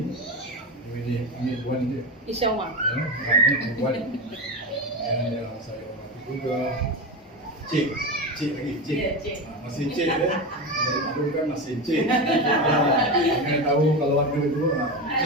ini Wan dia. InsyaAllah. Wan. Yang saya hormati juga Cik lagi. Cik. Masih Cik ya. Dulu kan masih Cik. Jangan tahu kalau ada itu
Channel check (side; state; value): both; normal; correlation 0.20